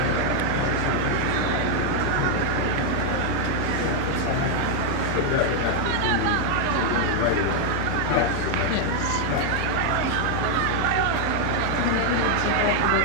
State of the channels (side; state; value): both; different; correlation 0.00